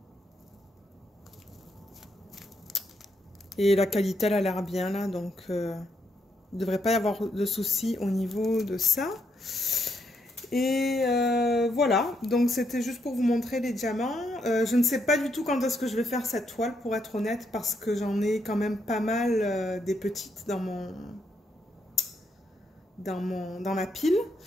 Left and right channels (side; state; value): both; normal; correlation 0.77